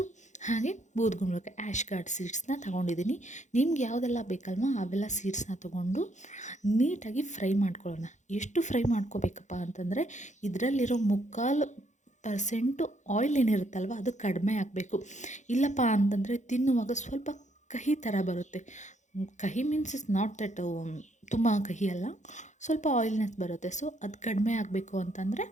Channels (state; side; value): late; right; 0.35 ms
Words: ಹಾಗೆ ಬೂದ್ಗುಂಬಳಕಾಯಿ ಆ್ಯಶ್ ಗಾರ್ಡ್ ಸೀಡ್ಸ್ನ ತೊಗೊಂಡಿದ್ದೀನಿ. ನಿಮ್ಗೆ ಯಾವುದೆಲ್ಲ ಬೇಕಲ್ವ ಅವೆಲ್ಲ ಸೀಡ್ಸ್ನ ತೊಗೊಂಡು ನೀಟಾಗಿ ಫ್ರೈ ಮಾಡ್ಕೊಳ್ಳೋಣ. ಎಷ್ಟು ಫ್ರೈ ಮಾಡ್ಕೋಬೇಕಪ್ಪ ಅಂತಂದರೆ ಇದರಲ್ಲಿರೋ 3% ಆಯಿಲ್ ಏನಿರುತ್ತಲ್ವ ಅದು ಕಡಿಮೆ ಆಗಬೇಕು. ಇಲ್ಲಪ್ಪ ಅಂತಂದರೆ ತಿನ್ನುವಾಗ ಸ್ವಲ್ಪ ಕಹಿ ಥರ ಬರುತ್ತೆ. ಕಹಿ ಮೀನ್ಸ್ ಇಸ್ ನಾಟ್ ದಟ್ ತುಂಬ ಕಹಿ ಅಲ್ಲ, ಸ್ವಲ್ಪ ಆಯಿಲ್ನೆಸ್ ಬರುತ್ತೆ. ಸೊ ಅದು ಕಡಿಮೆ ಆಗಬೇಕು ಅಂತಂದರೆ